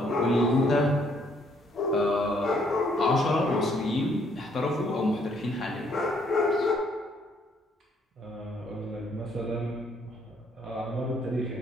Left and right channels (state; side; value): normal; both; correlation 0.67